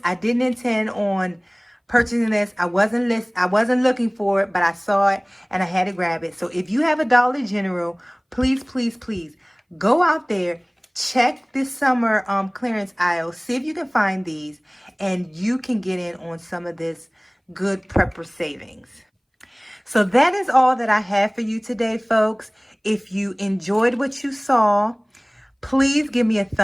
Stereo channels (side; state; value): both; identical; correlation 1.00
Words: I didn't intend on purchasing this. I wasn't looking for it, but I saw it and I had to grab it. So if you have a Dollar General, please go out there, check this summer clearance aisle, see if you can find these, and you can get in on some of this good prepper savings. So that is all that I have for you today, folks. If you enjoyed what you saw, please give me a